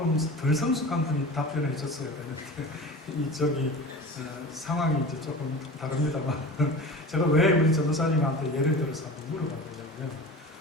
덜 성숙한 분이 답변해 줬어야 되는데 상황이 이제 조금 다릅니다만 제가 왜 우리 전도사님한테 예를 들어서 한번 물어봤냐면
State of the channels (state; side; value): normal; both; correlation 0.35